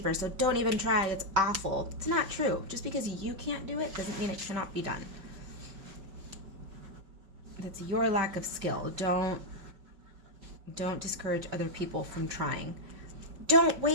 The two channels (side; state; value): left; late; 5.2 ms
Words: so don't even try, it's awful. It's not true. Just because you can't do it doesn't mean it cannot be done. That's your lack of skill. Don't discourage other people from trying. Don't